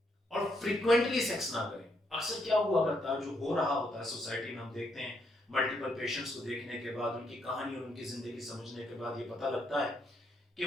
और फ्रीक्वेंटली सेक्स ना करें। अक्सर क्या हुआ करता है, जो हो रहा होता है सोसाइटी में, हम देखते हैं मल्टीपल पेशेंट्स को देखने के बाद, उनकी कहानी और उनकी जिंदगी समझने के बाद ये पता लगता है कि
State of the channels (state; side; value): normal; both; correlation 0.76